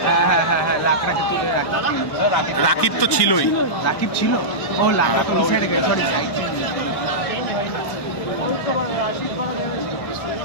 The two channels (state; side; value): late; right; 1.1 ms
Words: রাকিব তো ছিলই। রাকিব ছিল, ও লাগা তো সাইডে গেছে।